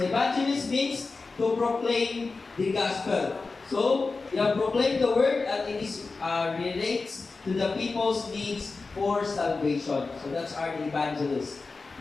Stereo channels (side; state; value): right; quieter; 4.0 dB